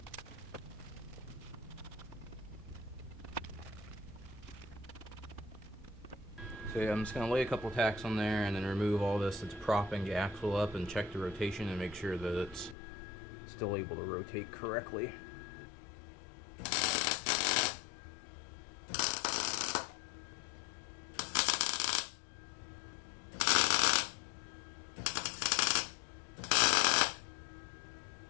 So yeah, I'm just going to lay a couple tacks on there and then remove all this that's propping the axle up and check the rotation and make sure that it's still able to rotate correctly.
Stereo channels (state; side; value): drops out; right; at 12.8 s